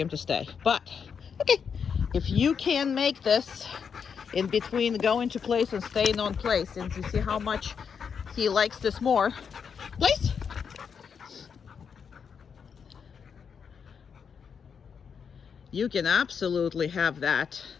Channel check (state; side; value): quieter; right; 6.6 dB